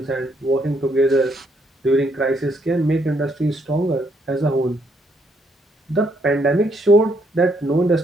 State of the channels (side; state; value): both; normal; correlation 0.72